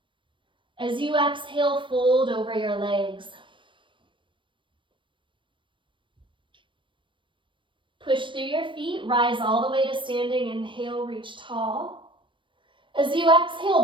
As you exhale, fold over your legs. Push through your feet, rise all the way to standing. Inhale, reach tall. As you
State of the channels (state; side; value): late; left; 0.24 ms